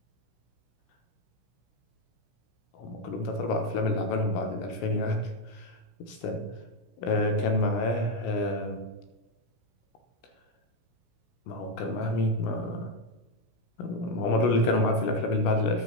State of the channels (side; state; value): right; late; 16 ms